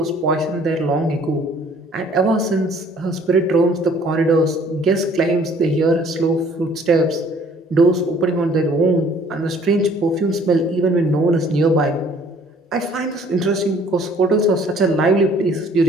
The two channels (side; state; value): both; normal; correlation 0.57